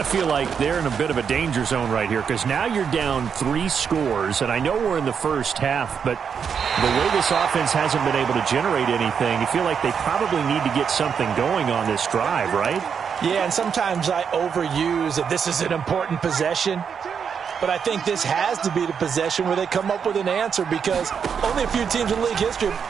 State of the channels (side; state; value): left; quieter; 6.9 dB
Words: feel like they're in a bit of a danger zone right here because now you're down 3 scores, and I know we're in the first half, but the way this offense hasn't been able to generate anything, you feel like they probably need to get something going on this drive, right? Yeah, and sometimes I overuse that this is an important possession. But I think this has to be the possession where they come up with an answer because only a few teams in league history